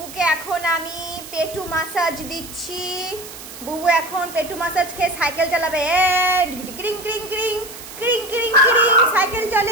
এখন আমি পেটু মাসাজ দিচ্ছি। বুবু এখন পেটু মাসাজ খেয়ে সাইকেল চালাবে। কিরিং কিরিং কিরিং কিরিং কিরিং কিরিং সাইকেল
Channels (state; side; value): noise; right; hiss, 14 dB below the sound